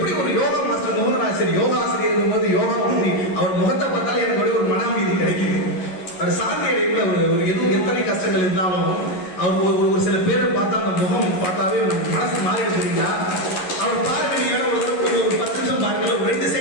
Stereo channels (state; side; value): late; right; 11 ms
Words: ஒரு யோகா மாஸ்டர் மோகனாசிரியர் யோகா ஆசிரியர் போது யோகா பண்ணி அவர் முகத்தை பார்த்தாலே எனக்கு ஒரு மன அமைதி கிடைக்குது. அவர் சாந்தி அடைப்புல எதுவும் எத்தனை கஷ்டங்கள் இருந்தாலும் அவர் ஒரு சில பேரை பார்த்தா அந்த முகம் பார்த்தாவே மனசு மாறிடுச்சுங்களா. அவர் பாருங்க, நீங்க ஒரு 10 நிமிஷம் பாருங்க, ஒரு 2